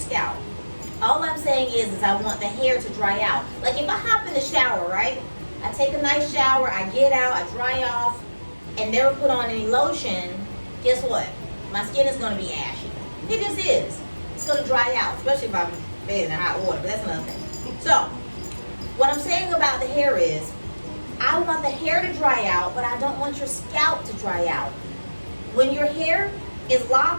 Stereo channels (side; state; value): both; inverted; correlation -1.00